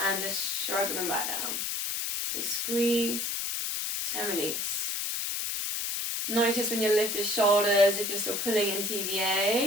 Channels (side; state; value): left; noise; hiss, 1 dB below the sound